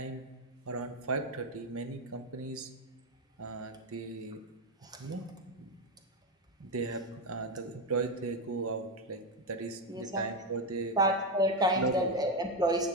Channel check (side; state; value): both; normal; correlation 0.09